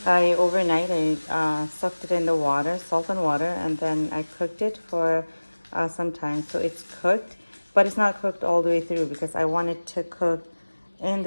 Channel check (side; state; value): both; inverted; correlation -1.00